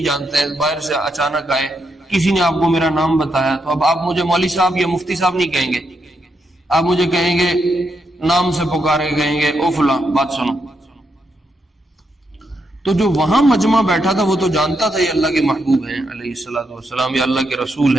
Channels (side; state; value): both; normal; correlation 0.81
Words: جانتے، باہر سے اچانک آئے، کسی نے آپ کو میرا نام بتایا، تو اب آپ مجھے مولوی صاحب یا مفتی صاحب نہیں کہیں گے، آپ مجھے کہیں گے، نام سے پکارے کہیں گے، او فلاں بات سنو۔ تو جو وہاں مجمع بیٹھا تھا وہ تو جانتا تھا یہ اللہ کے محبوب ہیں علیہ الصلوۃ والسلام، یا اللہ کے رسول